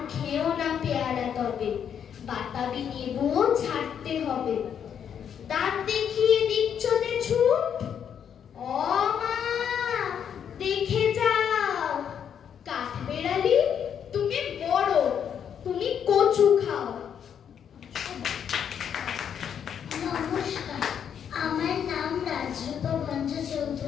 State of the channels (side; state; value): right; quieter; 8.3 dB